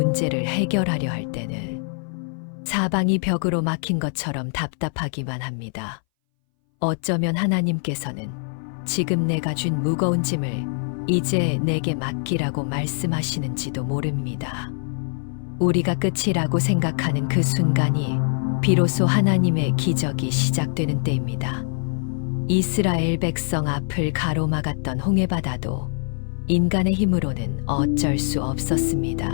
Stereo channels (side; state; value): right; silent; 61 dB below the other